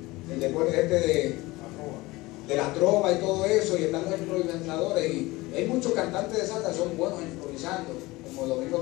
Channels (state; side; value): quieter; right; 20.7 dB